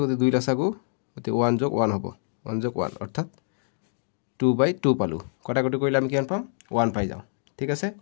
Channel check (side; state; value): right; silent; 56 dB below the other